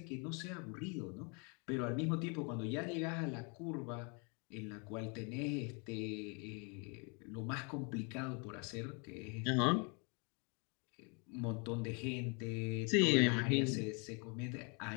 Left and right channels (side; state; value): right; quieter; 34.4 dB